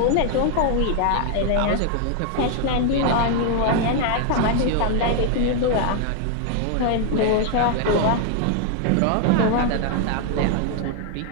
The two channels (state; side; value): different; both; correlation 0.00